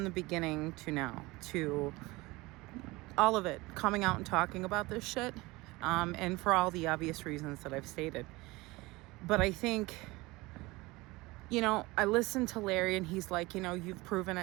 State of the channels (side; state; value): left; quieter; 21.9 dB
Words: beginning to now, to all of it, coming out and talking about this shit, and for all the obvious reasons that I've stated. But I think, I listened to Larry and he's like, you've proven